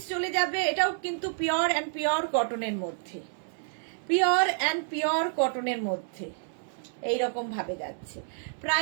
চলে যাবে, এটাও কিন্তু পিওর অ্যান্ড পিওর কটনের মধ্যে, পিওর অ্যান্ড পিওর কটনের মধ্যে এইরকম ভাবে যাচ্ছে।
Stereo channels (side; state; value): left; silent; 58 dB below the other